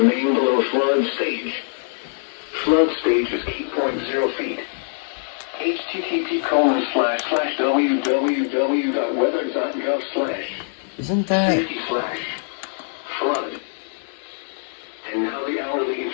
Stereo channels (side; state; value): right; silent; digital silence